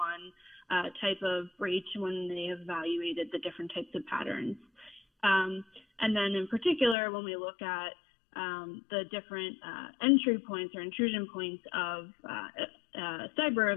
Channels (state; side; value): drops out; right; at 7.0 s